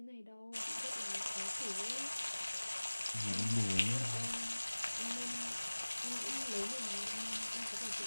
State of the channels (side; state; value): both; inverted; correlation -1.00